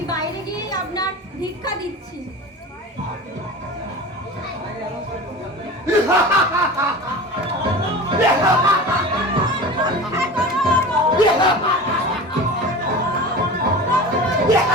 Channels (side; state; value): both; normal; correlation 0.34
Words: বাইরে গিয়েই আপনার ভিক্ষা দিচ্ছি।